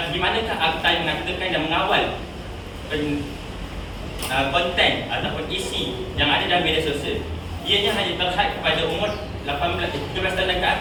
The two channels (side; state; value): both; identical; correlation 1.00